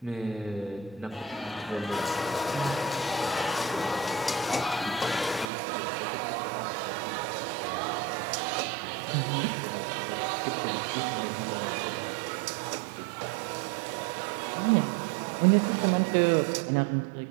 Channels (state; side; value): drops out; left; at 5.5 s